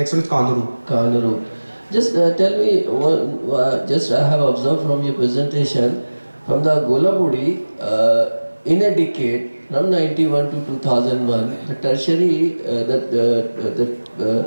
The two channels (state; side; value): inverted; both; correlation -1.00